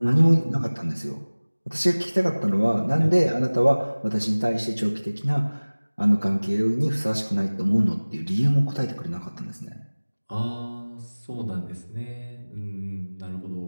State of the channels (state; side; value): inverted; both; correlation -1.00